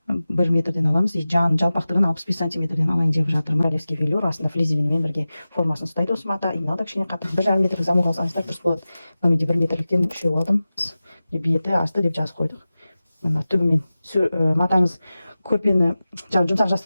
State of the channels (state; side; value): inverted; both; correlation -0.95